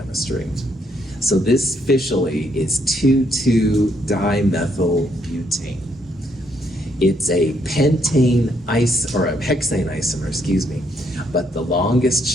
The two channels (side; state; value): both; normal; correlation 0.73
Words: So this officially is 2,2-dimethyl butane. It's a pentane or a hexane isomer, excuse me. But the longest